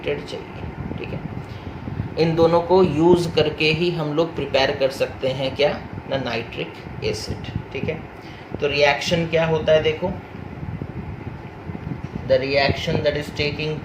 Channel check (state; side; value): identical; both; correlation 1.00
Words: चाहिए। ठीक है, इन दोनों को यूज़ करके ही हम लोग प्रिपेयर कर सकते हैं क्या ना, नाइट्रिक एसिड। ठीक है, तो रिएक्शन क्या होता है देखो, the reaction that is taking